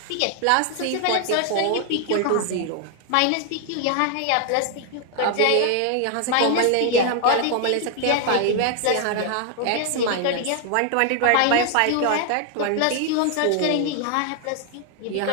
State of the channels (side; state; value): both; different; correlation 0.00